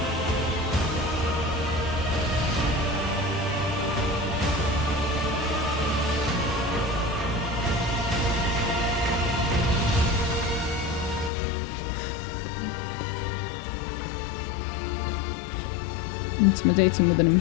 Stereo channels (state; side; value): drops out; right; at 11.3 s